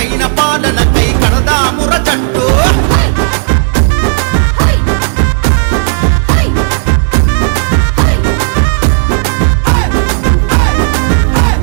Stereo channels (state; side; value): silent; left; digital silence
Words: పాలనకై కడదా ముర జట్టు